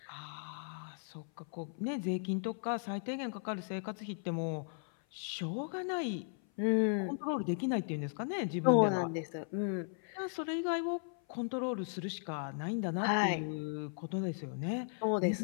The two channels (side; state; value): right; silent; 53 dB below the other